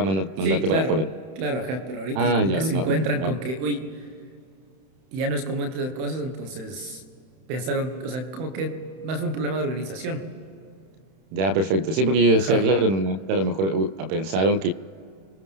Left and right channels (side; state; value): left; late; 31 ms